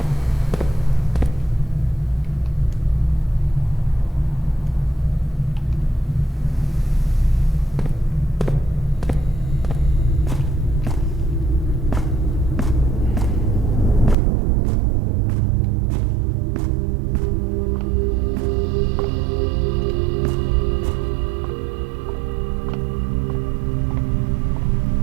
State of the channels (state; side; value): drops out; left; at 14.2 s